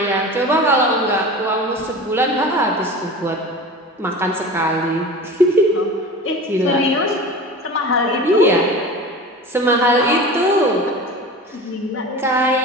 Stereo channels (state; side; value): normal; both; correlation 0.34